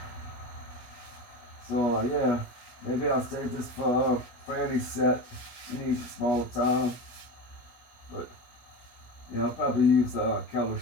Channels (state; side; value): late; right; 17 ms